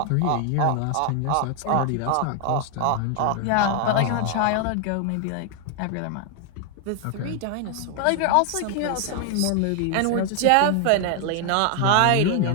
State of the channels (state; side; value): different; both; correlation 0.00